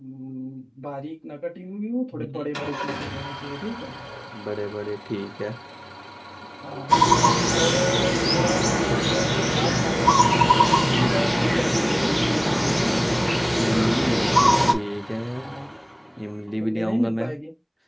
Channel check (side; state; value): both; identical; correlation 1.00